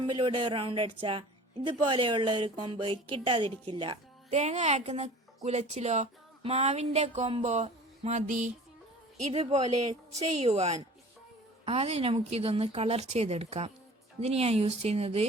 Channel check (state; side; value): normal; both; correlation 0.44